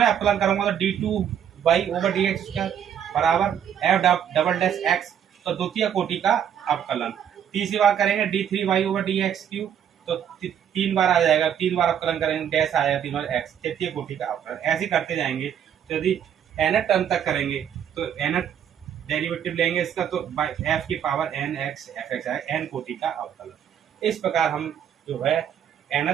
अवकलन करूंगा तो d2y/dx बराबर f'(x), तो द्वितीय कोटि का अवकलन। तीसरी बार करेंगे d3y/dx3, तो तीन बार आ जाएगा, तीन बार अवकलन करेंगे डैश आएगा, तीन बार x, तृतीय कोटि का अवकलन। ऐसे करते जाएंगे। तो यदि n टर्म तक करेंगे तो n डेरिवेटिव लेंगे इसका, तो f की पावर nx fx आएगा, n कोटि का अवकलन। इस प्रकार हम जो है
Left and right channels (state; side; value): quieter; left; 9.0 dB